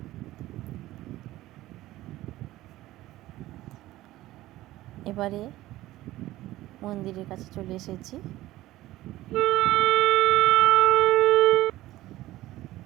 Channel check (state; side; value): quieter; left; 16.1 dB